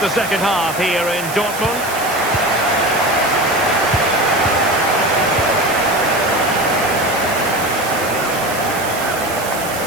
second half here in Dortmund.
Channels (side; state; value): right; noise; hiss, 10 dB below the sound